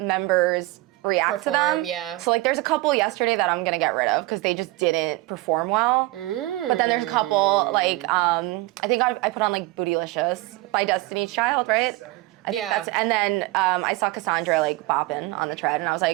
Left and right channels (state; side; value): quieter; left; 20.1 dB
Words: react to them. Yeah. So like there's a couple yesterday that I'm gonna get rid of because they just didn't perform well. But then there's a couple like I think I put on like Bootylicious by Destiny's Child, right? I think and then I saw Cassandra like bopping on the tread, and I was